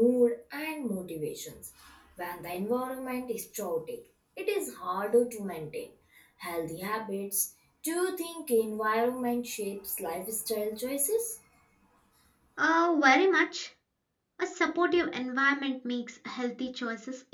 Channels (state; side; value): identical; both; correlation 1.00